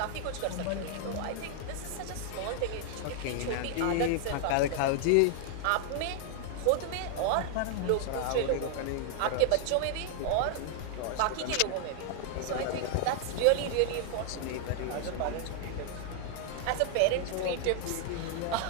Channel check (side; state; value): both; different; correlation 0.00